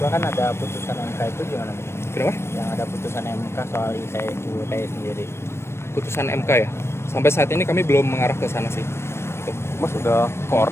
kan ada putusan MK itu gimana? Kenapa? Yang ada putusan MK soal ITE sendiri. Putusan MK ya? Sampai saat ini kami belum mengarah ke sana sih. Gitu. Mas, udah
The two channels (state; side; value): late; right; 0.12 ms